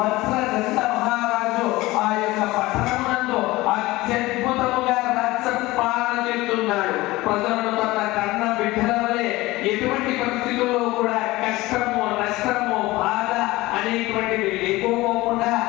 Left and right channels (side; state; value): right; quieter; 19.5 dB